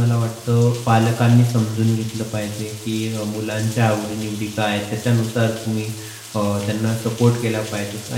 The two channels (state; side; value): identical; both; correlation 1.00